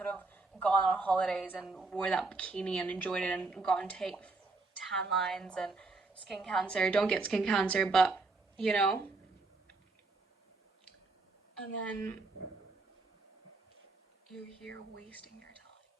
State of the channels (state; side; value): quieter; left; 3.6 dB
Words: have gone on holidays and wore that bikini and enjoyed it and gotten tan lines and skin cancer. Don't get skin cancer, but you know. And then you're here wasting your time.